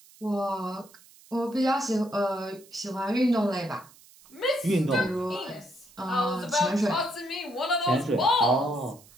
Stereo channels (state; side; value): noise; right; hiss, 25 dB below the sound